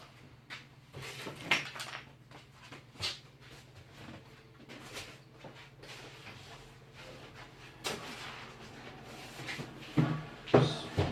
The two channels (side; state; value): both; identical; correlation 1.00